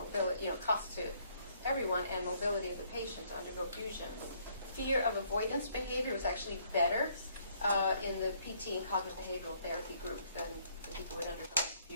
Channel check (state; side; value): inverted; both; correlation -0.67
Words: cost to everyone and mobility of the patient to undergo fusion. Fear of avoidance behavior was actually better in the PT and cognitive behavioral therapy group than the people who had undergone